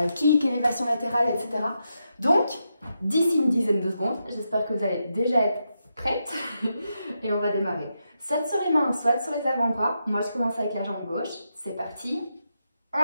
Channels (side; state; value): both; inverted; correlation -0.85